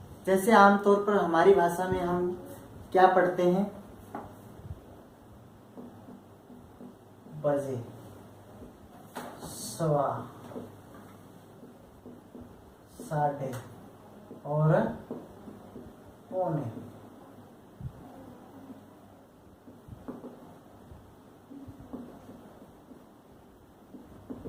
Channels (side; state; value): both; identical; correlation 1.00